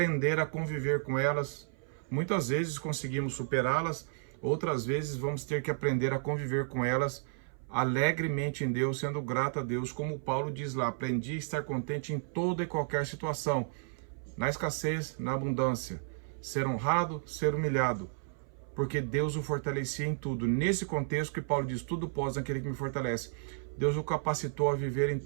a conviver com elas. Muitas vezes conseguimos superá-las, outras vezes vamos ter que aprender a conviver com elas alegremente em Deus, sendo grato a Deus, como Paulo diz lá: aprendi a estar contente em toda e qualquer situação, na escassez, na abundância, ser honrado, ser humilhado, porque Deus o fortalecia em tudo. Nesse contexto que Paulo diz: tudo posso naquele que me fortalece. Deus o capacitou a viver em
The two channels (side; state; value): left; silent; 56 dB below the other